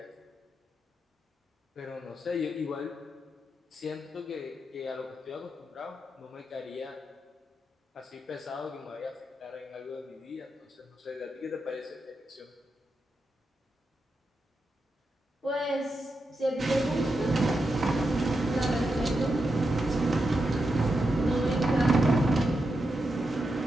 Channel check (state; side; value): normal; both; correlation 0.87